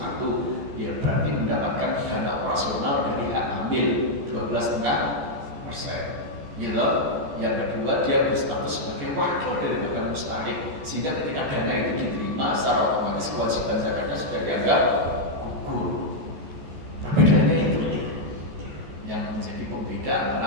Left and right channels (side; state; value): left; late; 14 ms